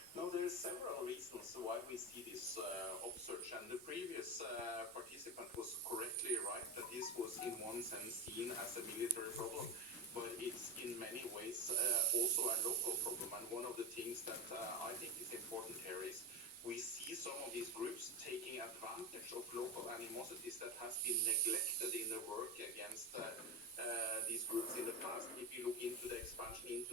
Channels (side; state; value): both; normal; correlation 0.20